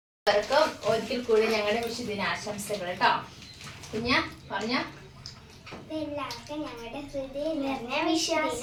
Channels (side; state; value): both; identical; correlation 1.00